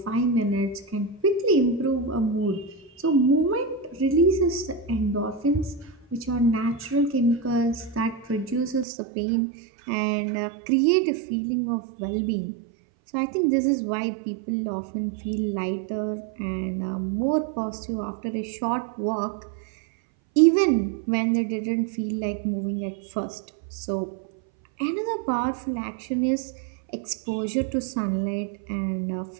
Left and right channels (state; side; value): drops out; left; at 8.8 s